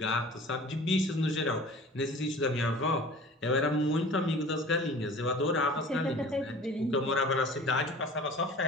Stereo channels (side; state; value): both; normal; correlation 0.43